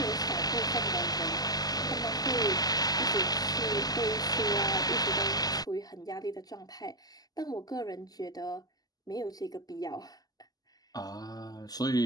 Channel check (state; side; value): late; right; 0.18 ms